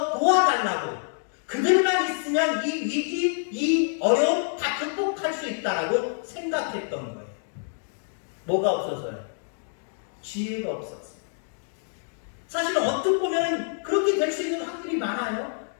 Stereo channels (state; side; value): silent; right; 60 dB below the other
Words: 도와달라고, 그들만 있으면 이 위기, 이 어려움 다 극복할 수 있다라고 생각했던 거예요. 뭐가 없어서요? 지혜가 없었어요. 사실은 어떻게 보면 그렇게 될 수 있는 확률이 많아요.